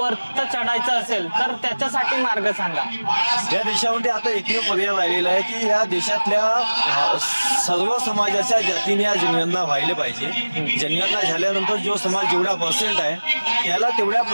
चढायचं असेल तर त्याच्यासाठी मार्ग सांगा. या देशामध्ये आता एकमेव पर्याय राहिलेला आहे की या देशातल्या सर्व समाजाच्या जातीने या जनगणना व्हायला पाहिजे. जनगणना झाल्यानंतर जो समाज जेवढा पर्सेंट आहे त्याला तेवढ्या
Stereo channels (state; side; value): inverted; both; correlation -1.00